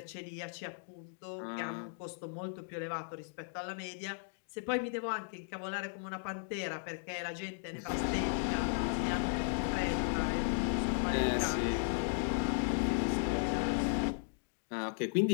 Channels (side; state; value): right; silent; digital silence